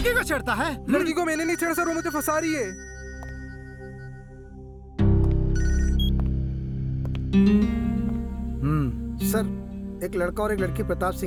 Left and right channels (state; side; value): identical; both; correlation 1.00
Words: को छेड़ता है? लड़की को मैंने नहीं छेड़ा सर, वो मुझे फंसा रही है। सर, एक लड़का और एक लड़की प्रताप